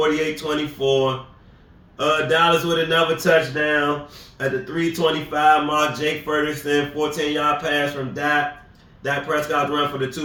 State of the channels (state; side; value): identical; both; correlation 1.00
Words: Dallas with another touchdown at the 3:25 mark. Jake Ferguson, 14-yard pass from Dak. Dak Prescott run for the